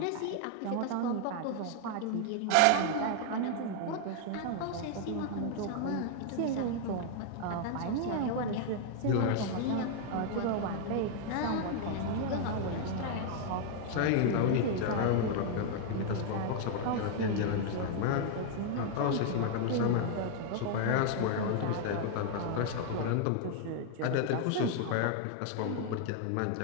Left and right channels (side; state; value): both; different; correlation 0.00